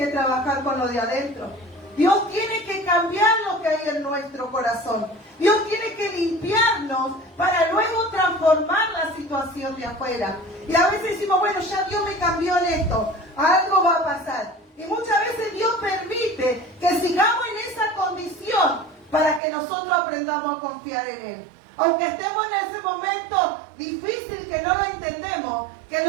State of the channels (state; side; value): drops out; left; at 19.4 s